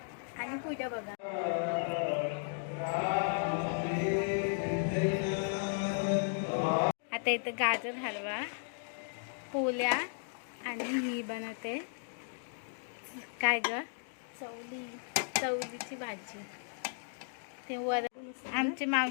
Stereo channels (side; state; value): right; silent; digital silence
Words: आणि पुढे बघा. आता इथं गाजर हलवा, पोल्या आणि ही बनवते काय ग, चवलीची भाजी. ते वर आमची